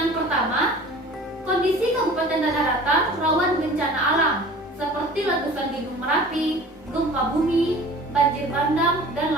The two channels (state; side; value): normal; both; correlation 0.44